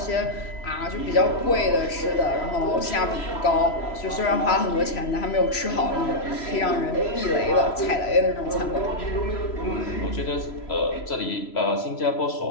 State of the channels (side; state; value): right; late; 3.0 ms